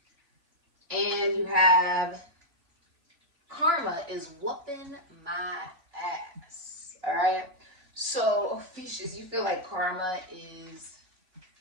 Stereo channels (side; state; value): left; late; 3.5 ms